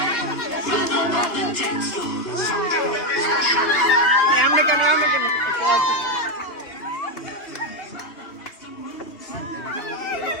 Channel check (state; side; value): late; right; 2.5 ms